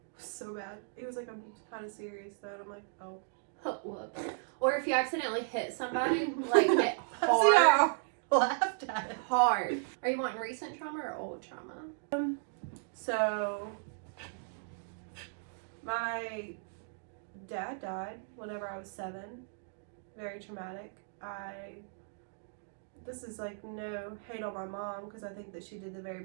was so bad. It was like, I'm kind of serious though. And I'm like, oh. Whoops. Or if you accidentally hit somebody, like hit See, hard. I laughed at it. Hard. Are you wanting recent trauma or old trauma? So, my dad died whenever I was 7. Very traumatic. This is like no hate on my mom because I think that she did the very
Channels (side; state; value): left; silent; digital silence